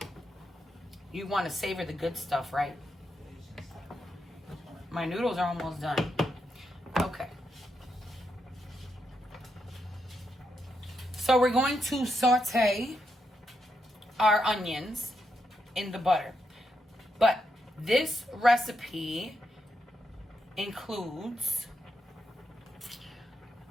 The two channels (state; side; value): normal; both; correlation 0.83